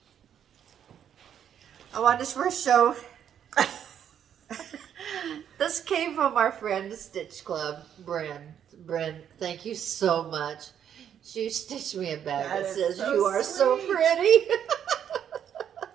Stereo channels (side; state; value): left; quieter; 9.1 dB